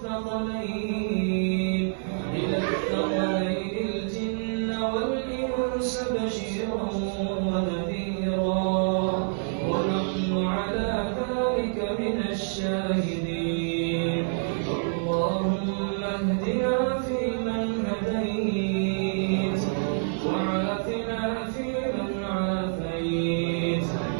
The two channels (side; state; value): left; silent; 55 dB below the other